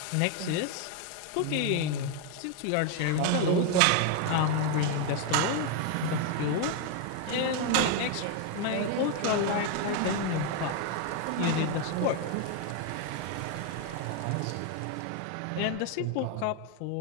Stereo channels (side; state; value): both; different; correlation 0.01